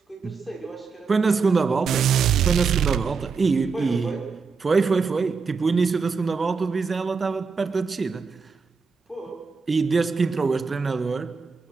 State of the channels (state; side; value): quieter; left; 5.0 dB